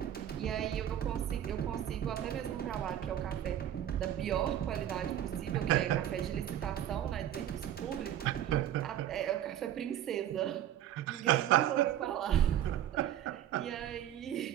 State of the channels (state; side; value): quieter; left; 11.3 dB